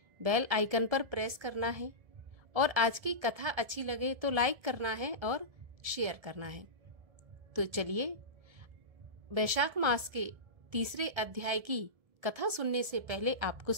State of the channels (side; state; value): left; late; 1.7 ms